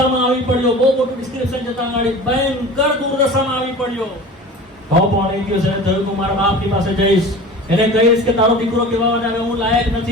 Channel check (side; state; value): both; normal; correlation 0.38